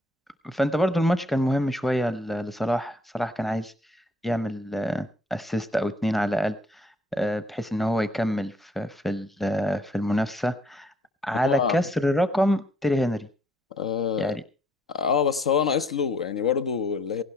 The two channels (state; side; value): normal; both; correlation 0.65